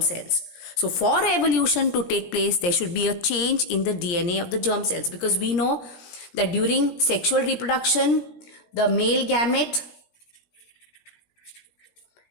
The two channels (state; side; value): late; right; 17 ms